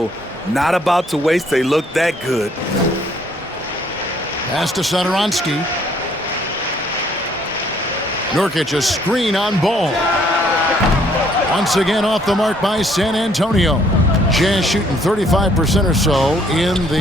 Not about to waste. They look that good. Pass to Satoransky. Nurkic a screen on Ball. Once again off the mark by San Antonio. Jazz shooting 35% or so in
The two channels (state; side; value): normal; both; correlation 0.64